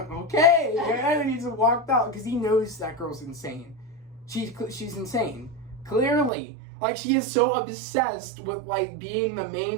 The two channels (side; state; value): left; drops out; at 6.3 s